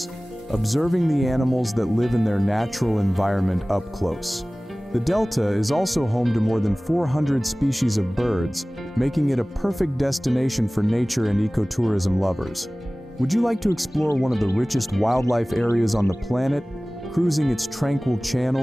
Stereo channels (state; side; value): normal; both; correlation 0.98